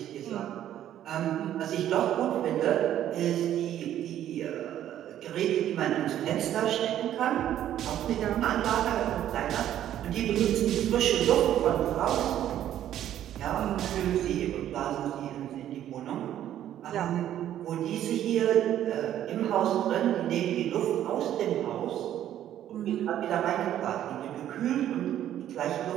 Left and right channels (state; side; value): quieter; left; 11.5 dB